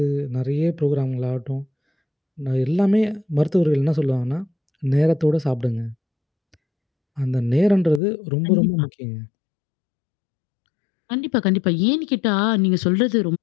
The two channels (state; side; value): drops out; right; at 8.0 s